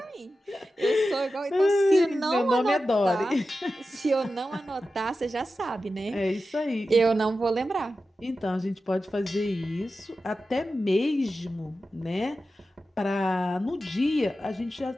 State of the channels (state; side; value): normal; both; correlation 0.92